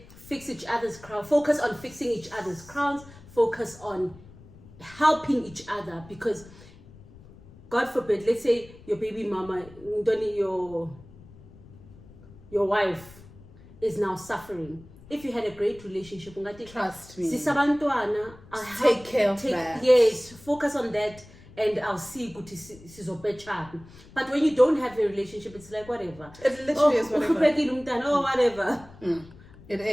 fix each other's crown. Focus on fixing each other's crowns. Focus on helping each other, because God forbid, let's say your baby mama, your wife is now suffering. If you had a great relationship, trust me, take care of that. Yes, focus on that, and I'll see good to. But when you don't have a relationship, it's like whatever. It literally is whatever. Whatever. It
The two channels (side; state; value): left; noise; rumble, 21 dB below the sound